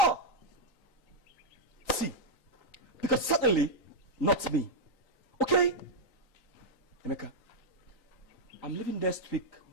See, because certainly not me. Okay? Emeka, I'm leaving next week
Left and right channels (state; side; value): late; right; 3.9 ms